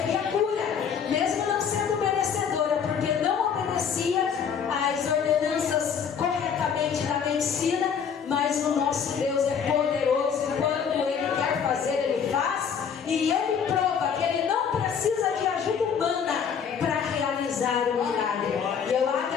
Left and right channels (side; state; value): right; quieter; 7.1 dB